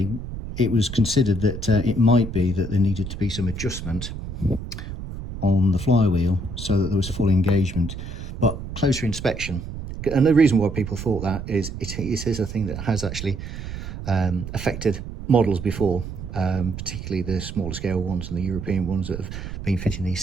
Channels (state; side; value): noise; right; rumble, 8 dB below the sound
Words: it was considered that it might be that there needed to be some adjustment on the flywheel so that there was full engagement. But closer inspection, and the reason why people thought that is it is a thing that has actually affected models before, particularly the smaller scale ones and the European ones that have been fitting these